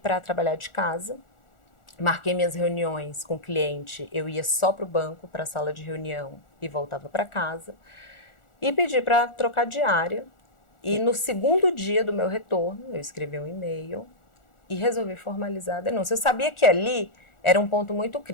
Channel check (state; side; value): late; right; 1.4 ms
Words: trabalhar de casa. Marquei minhas reuniões com o cliente, eu ia só para o banco, para a sala de reunião e voltava para casa. E pedi para trocar diária. E no segundo dia do meu retorno, eu escrevi um e-mail e resolvi formalizar a denúncia. Eu sabia que ali era um ponto muito